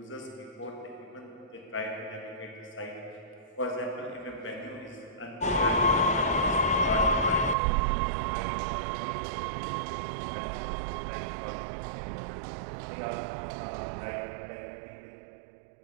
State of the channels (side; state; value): left; drops out; at 7.6 s